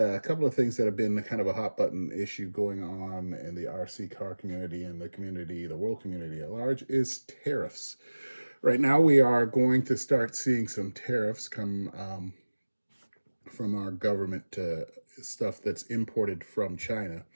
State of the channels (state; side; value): inverted; both; correlation -1.00